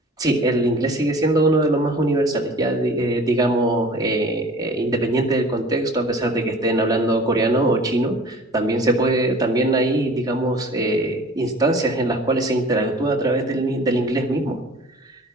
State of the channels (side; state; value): both; normal; correlation 0.45